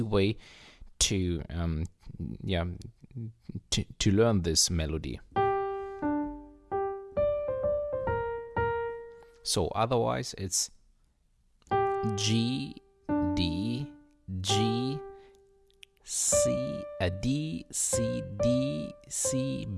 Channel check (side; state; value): both; identical; correlation 1.00